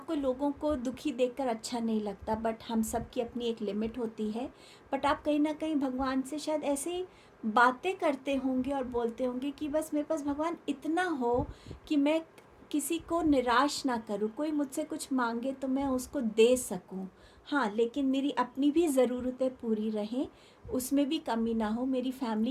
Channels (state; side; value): identical; both; correlation 1.00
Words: लोगों को दुखी देखकर अच्छा नहीं लगता, बट हम सब की अपनी एक लिमिट होती है। बट आप कहीं ना कहीं भगवान से शायद ऐसे बातें करते होंगे और बोलते होंगे कि बस मेरे पास भगवान इतना हो कि मैं किसी को निराश ना करूँ, कोई मुझसे कुछ मांगे तो मैं उसको दे सकूँ। हाँ, लेकिन मेरी अपनी भी ज़रूरतें पूरी रहें, उसमें भी कमी ना हो, मेरी